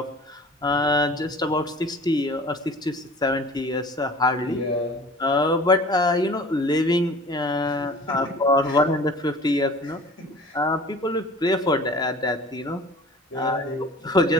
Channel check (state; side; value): normal; both; correlation 0.44